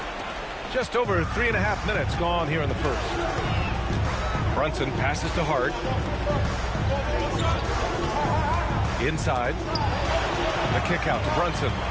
Just over 3.5 minutes gone here in the first. Brunson passes to Hart. Inside. The kick out to Brunson.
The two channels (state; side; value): identical; both; correlation 1.00